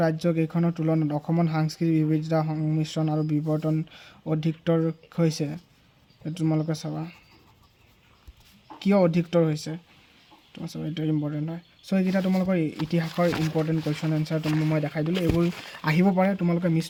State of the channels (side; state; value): both; identical; correlation 1.00